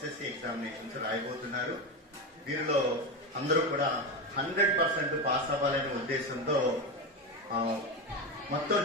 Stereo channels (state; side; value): normal; both; correlation 0.17